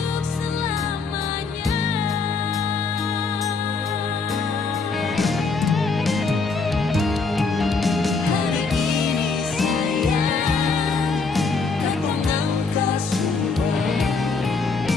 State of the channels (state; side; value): quieter; right; 4.3 dB